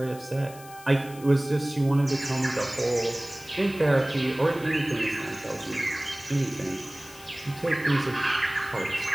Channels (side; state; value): left; noise; hiss, 19 dB below the sound